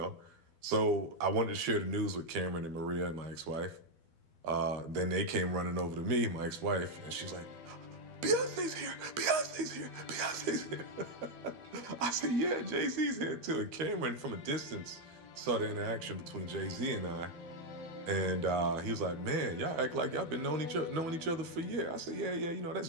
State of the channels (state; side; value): late; left; 12 ms